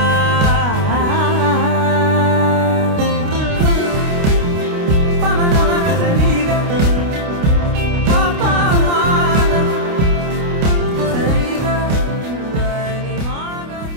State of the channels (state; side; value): late; left; 29 ms